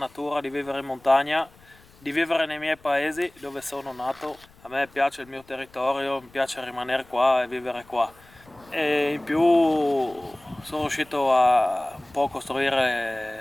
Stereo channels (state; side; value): noise; left; rumble, 27 dB below the sound